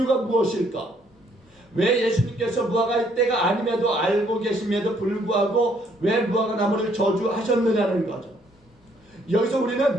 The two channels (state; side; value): normal; both; correlation 0.67